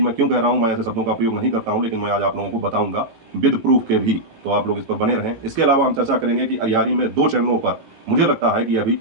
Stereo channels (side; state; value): left; late; 18 ms